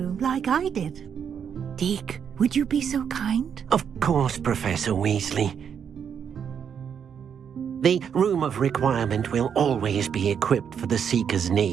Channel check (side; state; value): left; quieter; 7.7 dB